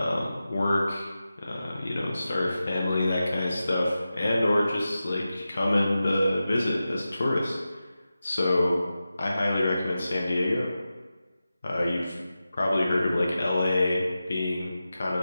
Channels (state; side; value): inverted; both; correlation -0.93